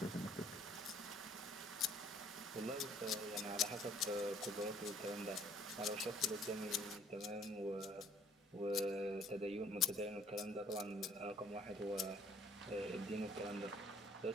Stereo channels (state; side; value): normal; both; correlation 0.59